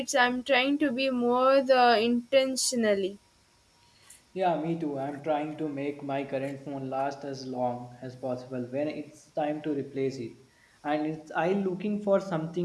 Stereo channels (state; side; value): identical; both; correlation 1.00